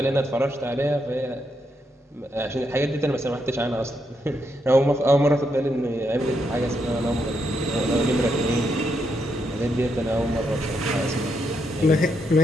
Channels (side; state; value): both; normal; correlation 0.80